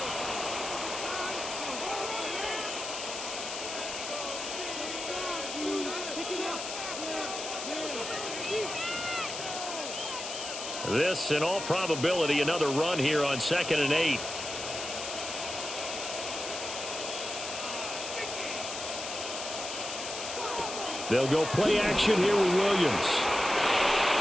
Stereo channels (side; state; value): left; noise; hiss, 6 dB below the sound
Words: This, in all probability, another run here on 2nd and 8. They'll go play action here with Williams.